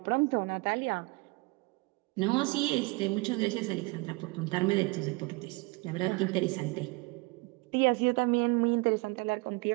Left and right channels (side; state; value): left; quieter; 26.1 dB